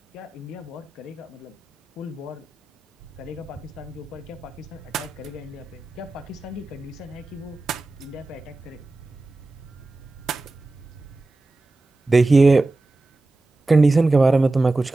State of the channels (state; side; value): quieter; left; 3.0 dB